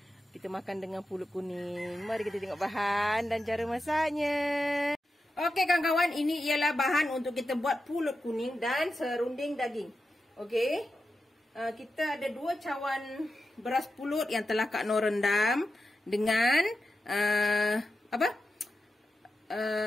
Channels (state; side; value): normal; both; correlation 0.90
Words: Kita makan dengan pulut kuning. Mari kita tengok bahan dan cara masaknya. Okey kawan-kawan, ini ialah bahan untuk kita buat pulut kuning dan serunding daging. Okey. Kita ada 2 cawan beras pulut yang telah Kak Noh rendam dengan